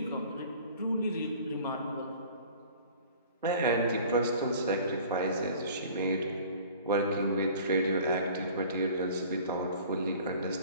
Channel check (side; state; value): both; inverted; correlation -0.47